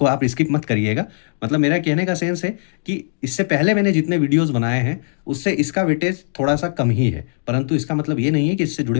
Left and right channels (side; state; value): right; silent; digital silence